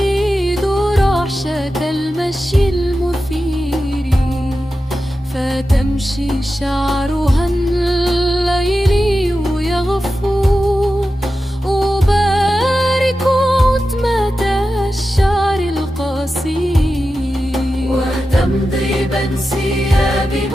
رعشة المشي المثير، فتمشي شعرها الليلي يغفو. أبارك عتمة الشعر القصير وتمضي بانسياب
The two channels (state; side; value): normal; both; correlation 0.92